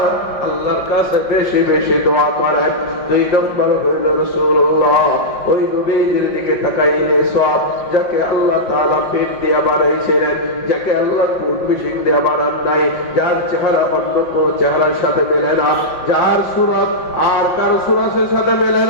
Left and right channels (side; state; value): right; late; 5.4 ms